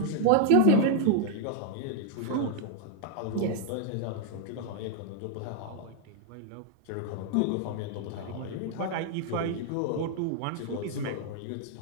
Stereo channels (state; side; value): different; both; correlation 0.00